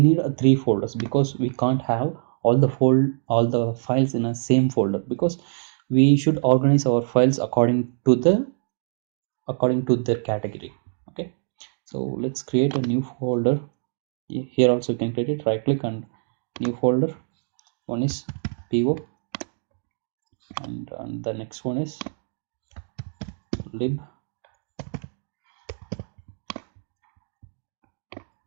three folders because we can't have all the files in a same folder, because we should organize our files according to their category. Okay, so let's create a new folder. Here also you can create it, right click and new folder. One is PO and the next one is lib,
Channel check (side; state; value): left; silent; digital silence